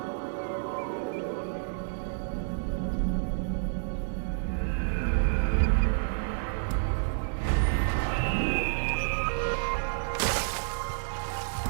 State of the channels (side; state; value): left; silent; digital silence